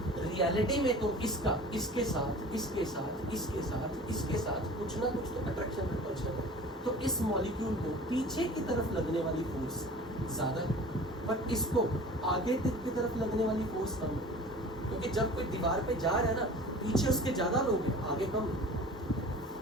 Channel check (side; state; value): both; normal; correlation 0.42